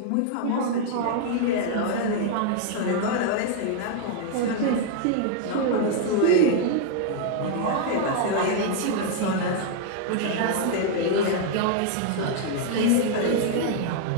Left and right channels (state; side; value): different; both; correlation 0.00